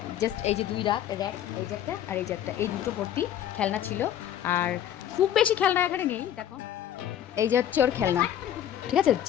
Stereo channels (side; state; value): right; quieter; 10.7 dB